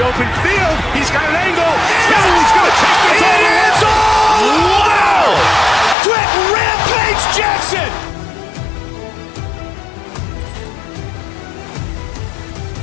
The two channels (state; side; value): drops out; right; at 6.0 s